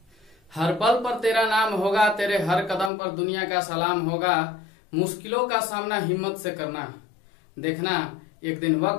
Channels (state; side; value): drops out; right; at 2.9 s